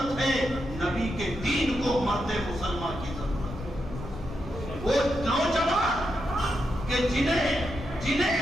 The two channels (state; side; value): noise; left; rumble, 11 dB below the sound